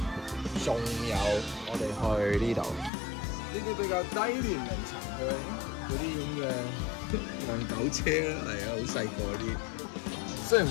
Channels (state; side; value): drops out; right; at 2.9 s